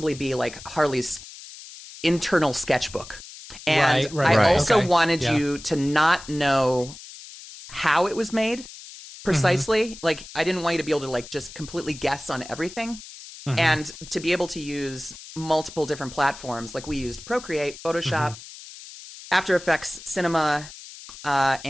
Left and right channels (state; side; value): noise; left; hiss, 16 dB below the sound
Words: be, like, Harley's internal sketchbook. And I also wanted you to not know how it was made precisely. Like, I didn't want you to be able to, like, just completely guess on everything. And to be able to use multiple different platforms. Like, we used Procreate, Photoshop, After Effects, Cinema,